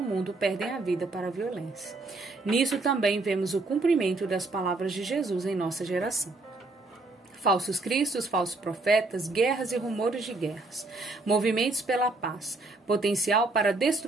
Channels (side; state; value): left; quieter; 3.2 dB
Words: mundo perdem a vida para a violência. Nisso também vemos o cumprimento das palavras de Jesus em nossa geração. Falsos cristos, falsos profetas, guerras e rumores de guerras, movimentos pela paz, potencial para